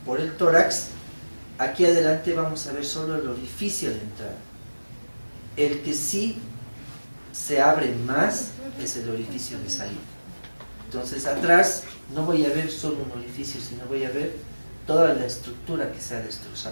por el tórax, aquí adelante vamos a ver solo el orificio de entrada. El que sí se abre más es el orificio de salida. Entonces atrás no voy a ver solo un orificio, sino voy a ver toda la estructura que se ha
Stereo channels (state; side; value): inverted; both; correlation -1.00